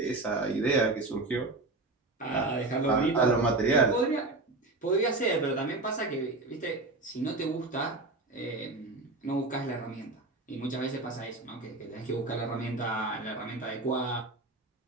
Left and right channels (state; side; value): quieter; left; 3.2 dB